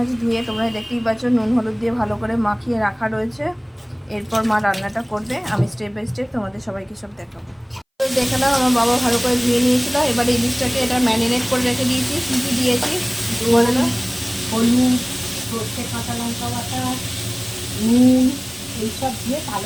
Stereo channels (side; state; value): both; identical; correlation 1.00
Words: ধুয়ে তোমরা দেখতেই পাচ্ছ নুন হলুদ দিয়ে ভালো করে মাখিয়ে রাখা রয়েছে। এরপর মা রান্নাটা করবে, আমি স্টেপ বাই স্টেপ তোমাদের সবাইকে সব দেখাবো। দেখে নাও আমার বাবা ভালো করে ধুয়ে নিয়েছিল। এবার ইলিশটাকে এটা ম্যারিনেট করে রেখে দিয়েছি। কী কী দিয়েছি বলে না? হলুদ, সর্ষে, কাঁচা লঙ্কা বাটা, নুন এইসব দিয়ে